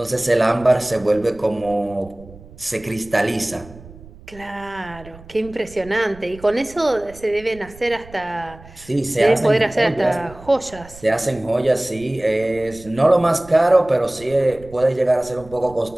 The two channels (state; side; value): noise; right; rumble, 20 dB below the sound